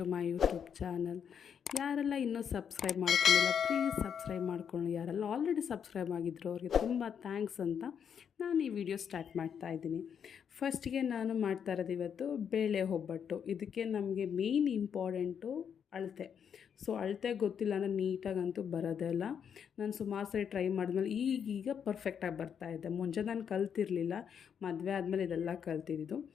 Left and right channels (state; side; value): quieter; right; 7.7 dB